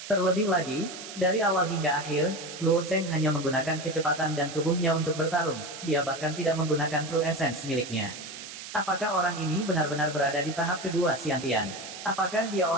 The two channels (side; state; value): right; noise; hiss, 11 dB below the sound